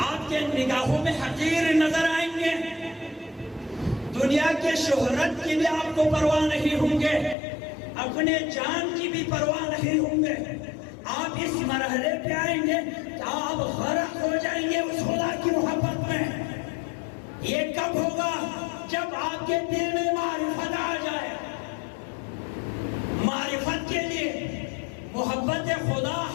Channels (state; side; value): drops out; right; at 7.4 s